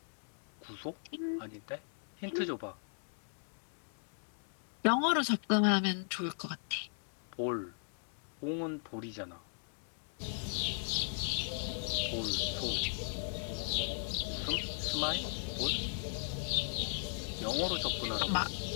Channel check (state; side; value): silent; right; digital silence